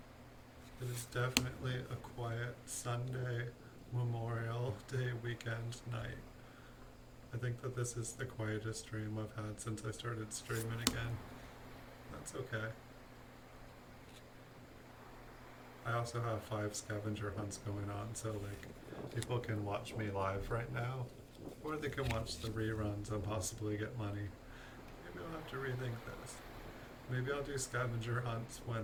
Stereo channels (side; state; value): both; identical; correlation 1.00